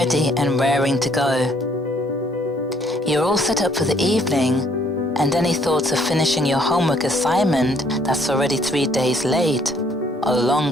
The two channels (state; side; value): normal; both; correlation 0.64